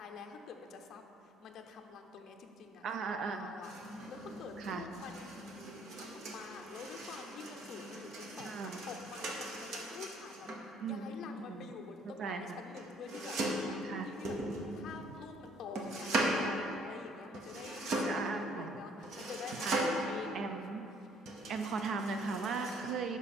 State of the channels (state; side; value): normal; both; correlation 0.62